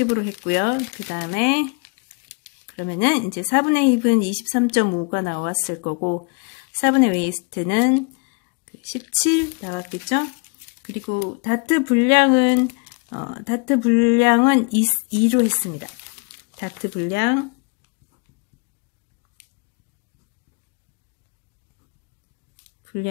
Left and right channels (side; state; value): right; quieter; 33.1 dB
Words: 했고요. 그 다음에 그러면은 이제 4분의 힙은 23.5가 나왔을 거고 4분의 웨이스트는 17 나왔겠죠. 그리고 다트 분량은 2로 했습니다. 다트 분량은